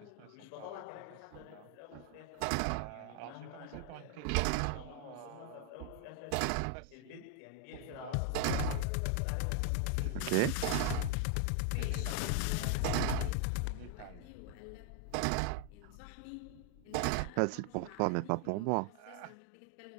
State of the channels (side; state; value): both; different; correlation 0.00